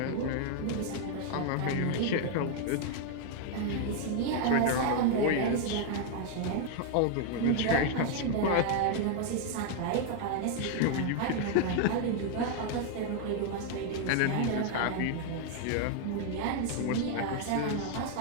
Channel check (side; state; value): both; different; correlation 0.00